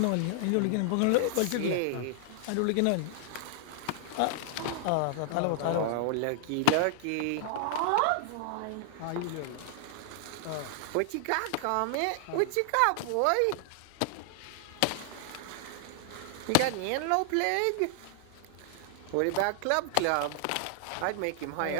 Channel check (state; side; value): different; both; correlation -0.01